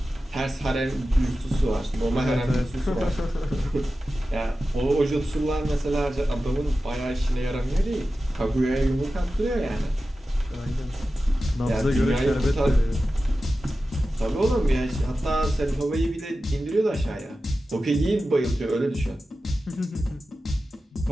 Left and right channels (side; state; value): both; normal; correlation 0.94